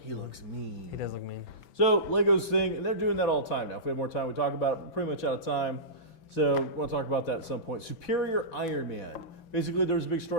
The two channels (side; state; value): right; late; 6.0 ms